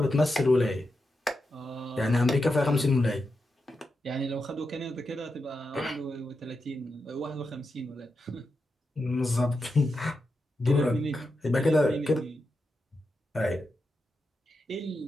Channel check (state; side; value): normal; both; correlation 0.88